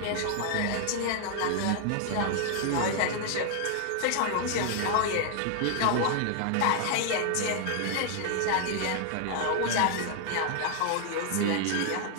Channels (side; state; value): both; different; correlation 0.00